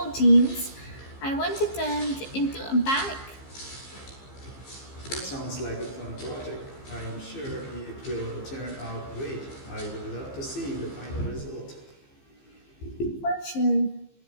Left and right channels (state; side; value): late; right; 15 ms